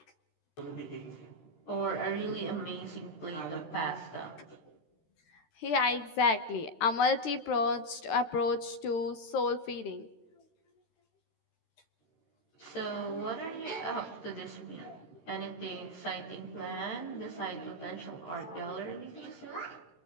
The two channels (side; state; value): right; late; 13 ms